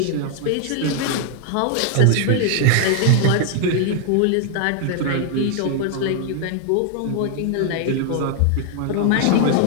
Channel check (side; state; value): both; different; correlation 0.00